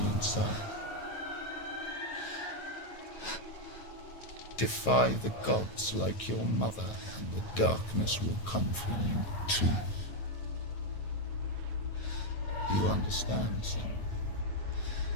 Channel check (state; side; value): late; right; 9.2 ms